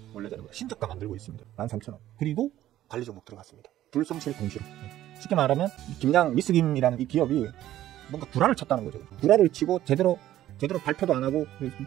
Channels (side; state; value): left; quieter; 13.3 dB